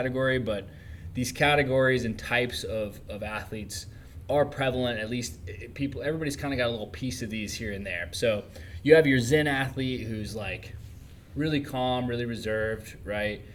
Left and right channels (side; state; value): both; identical; correlation 1.00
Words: but these categories and types of athletes are prevalent. At least everybody's kind of got a little piece of these here and there. So you have your Zen athlete who's like really calm, really reserved, right?